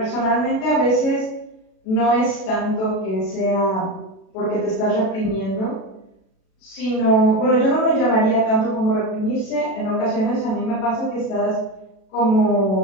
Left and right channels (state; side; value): late; right; 37 ms